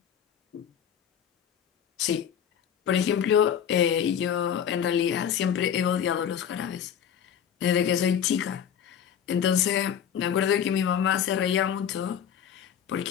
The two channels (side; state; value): right; quieter; 8.7 dB